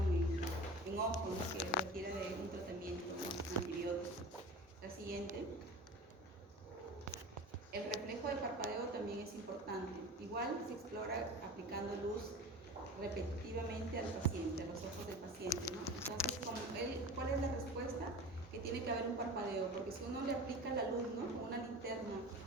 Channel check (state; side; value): normal; both; correlation 0.35